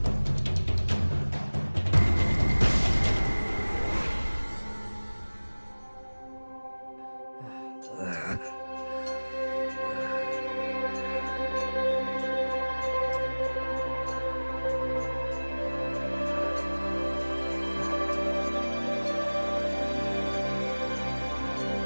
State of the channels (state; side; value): inverted; both; correlation -1.00